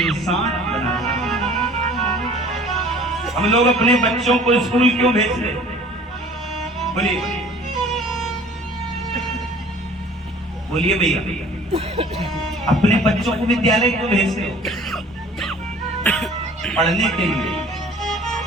बनाता। हम लोग अपने बच्चों को स्कूल क्यों भेजते? बोलिए बोलिए भैया, अपने बच्चों को विद्यालय क्यों भेजते हो? पढ़ने के लिए।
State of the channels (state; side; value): normal; both; correlation 0.49